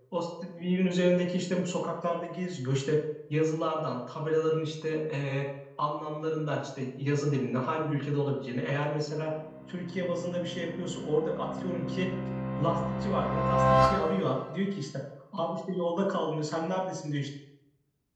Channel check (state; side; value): identical; both; correlation 1.00